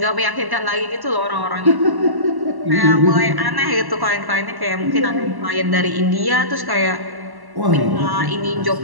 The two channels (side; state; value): left; late; 1.1 ms